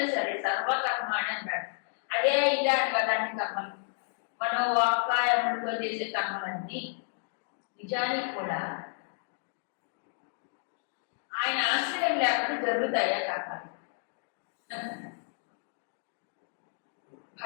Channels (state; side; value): silent; right; digital silence